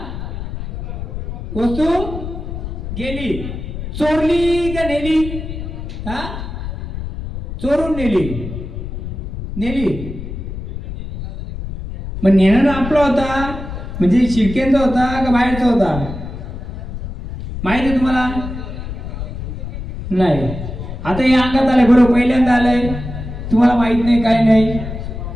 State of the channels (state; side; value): noise; left; rumble, 8 dB below the sound